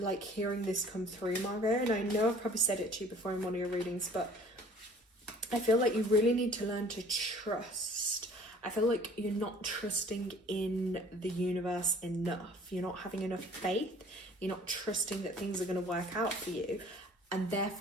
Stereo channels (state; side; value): normal; both; correlation 0.51